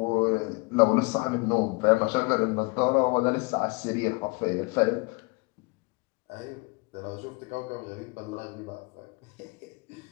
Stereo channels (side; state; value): right; quieter; 28.3 dB